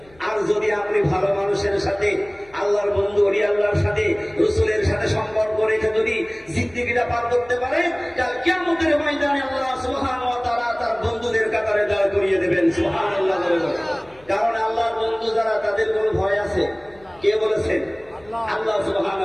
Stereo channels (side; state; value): left; noise; hum, 27 dB below the sound